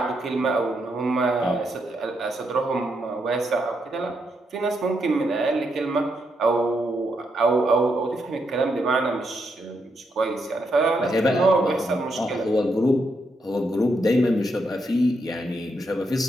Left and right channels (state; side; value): normal; both; correlation 0.80